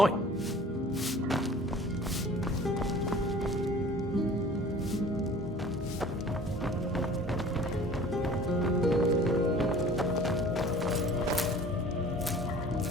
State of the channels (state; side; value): normal; both; correlation 0.46